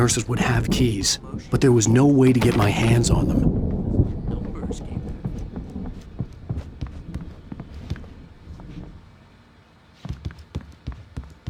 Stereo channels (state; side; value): identical; both; correlation 1.00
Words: would have keys, but there was no way to get my hands on them.